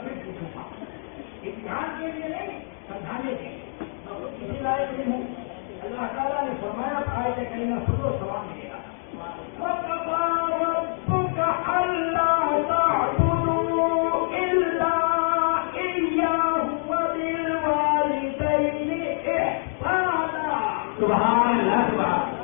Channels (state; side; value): silent; right; digital silence